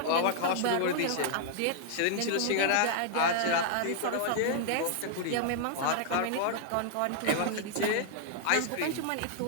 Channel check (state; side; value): different; both; correlation -0.01